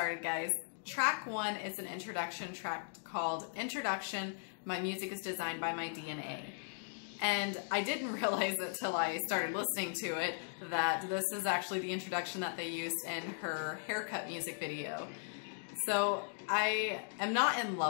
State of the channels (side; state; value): right; silent; digital silence